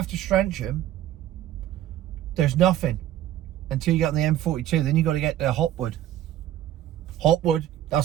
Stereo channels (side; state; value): left; quieter; 12.5 dB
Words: Strensham, there's nothing until you get on the M42. Then you've got to get to Hotwood. Hotwood,